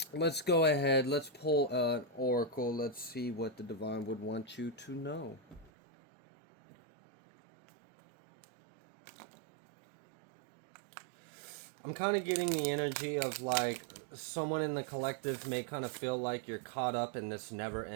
let's go ahead. Let's pull an oracle. Let's see what the divine would want you to know. I'm kind of getting the energy of like someone in the collective may kind of feel like you're caught up in this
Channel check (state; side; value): drops out; left; at 5.7 s